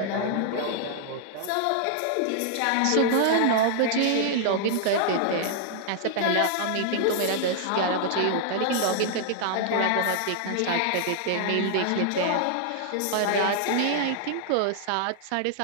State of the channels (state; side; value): different; both; correlation -0.01